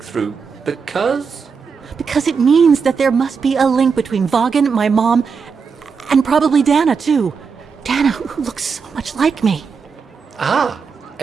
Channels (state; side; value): quieter; left; 5.7 dB